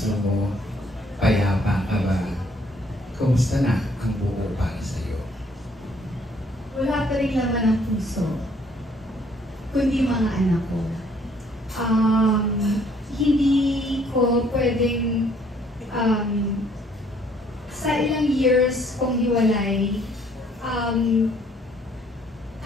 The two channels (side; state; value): both; normal; correlation 0.63